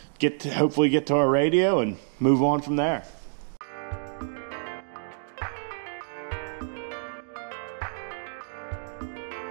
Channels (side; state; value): left; silent; digital silence